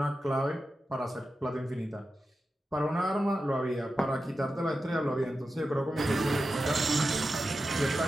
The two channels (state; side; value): normal; both; correlation 0.91